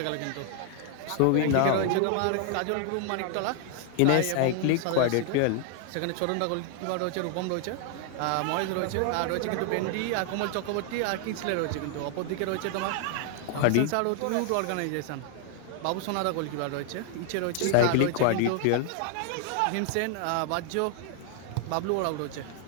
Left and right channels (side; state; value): both; different; correlation 0.00